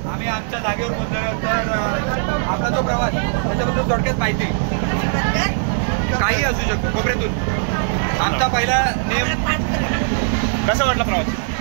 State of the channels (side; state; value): left; silent; 66 dB below the other